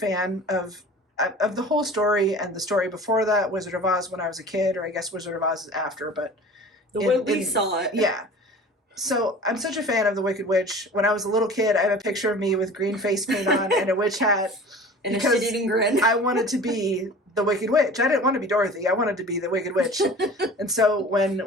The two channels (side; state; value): both; normal; correlation 0.41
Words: of the whole story, and the story before that, Wizard of Oz, when I was a kid, or I guess Wizard of Oz is after, but the way we saw it. Yeah. So I'm such a fan of the Wicked Witch. When I was a little kid, I have a picture of me with green face paint on and a witch hat. And a shit-eating grin. I wanted to be the Wicked Witch. I didn't want to be Dorothy. I wanted to be the Wicked Witch. And so